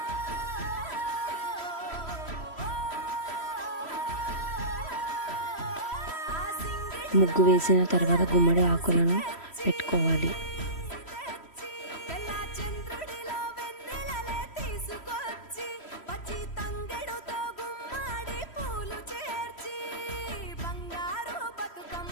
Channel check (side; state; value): right; late; 3.1 ms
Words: ముగ్గు వేసిన తర్వాత గుమ్మడి ఆకులను పెట్టుకోవాలి.